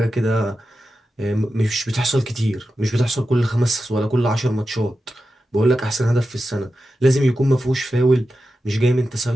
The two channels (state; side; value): normal; both; correlation 0.91